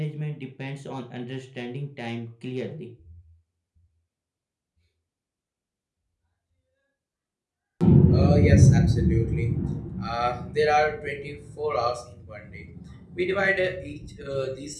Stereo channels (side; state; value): both; identical; correlation 1.00